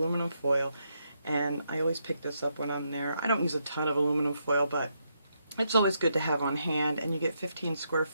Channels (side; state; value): both; inverted; correlation -0.80